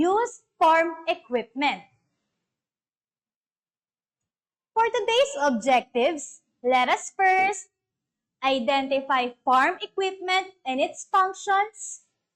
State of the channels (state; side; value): identical; both; correlation 1.00